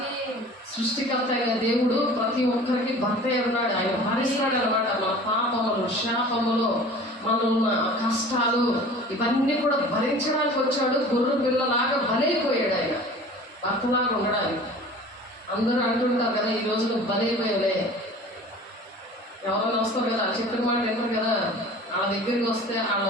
సృష్టికర్త అయిన దేవుడు ప్రతి ఒక్కరికి భర్త ఉన్నాడు. ఆయన భరిస్తాడు అనమాట. మన పాపములు, శాపములు, మనన్న కష్టాలు ఇవన్నీ కూడా భరించడానికి వచ్చాడు. గొర్రె పిల్లలాగా బలైపోయాడు ఆయన, భర్తలాగా ఉండడానికి. అందరూ అంటుంటారు కదా, ఈ రోజు నువ్వు బలైపోయావులే. ఎవరైనా వస్తారు కదా, చెప్పిన మాట విన్నారు కదా, వాళ్ళ దగ్గరికి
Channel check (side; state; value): both; normal; correlation 0.42